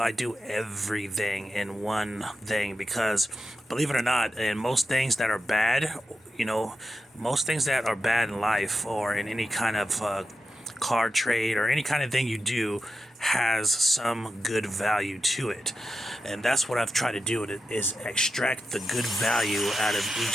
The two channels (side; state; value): both; normal; correlation 0.89